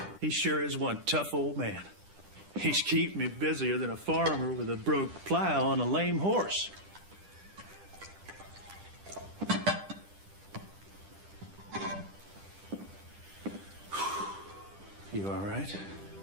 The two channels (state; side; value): late; left; 10 ms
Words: he sure is one tough old man. He's keeping me busier than a farmer with a broke plow and a lame horse. You all right?